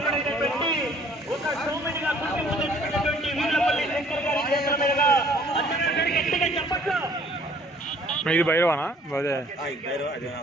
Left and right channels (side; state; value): both; normal; correlation 0.57